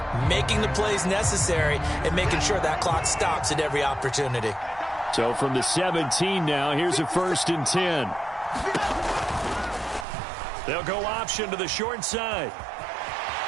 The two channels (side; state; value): left; drops out; at 10.1 s